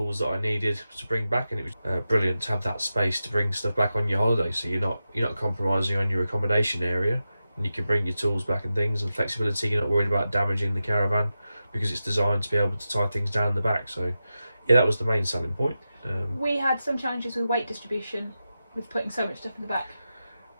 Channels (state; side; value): inverted; both; correlation -0.91